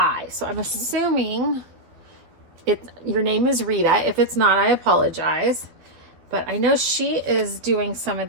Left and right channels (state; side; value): late; left; 12 ms